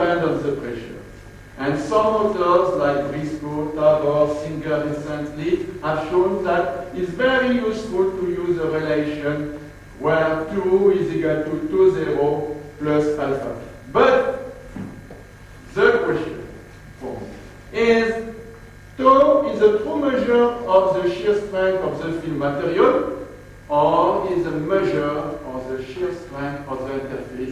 on the pressure. And some authors like Briscoe, Tabor, Singer recently have shown that it's very useful to use a relation where 2 is equal to 2,0 plus alpha. But the question for me is, tau is a true measure of the shear strength of the film material, or is a measure of the shear strength of the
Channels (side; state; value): both; identical; correlation 1.00